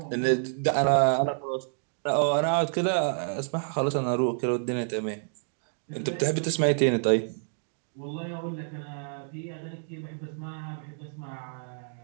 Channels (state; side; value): silent; left; digital silence